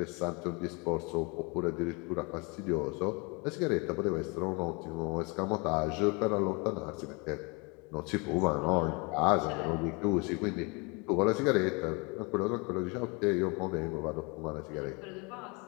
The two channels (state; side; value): quieter; right; 29.8 dB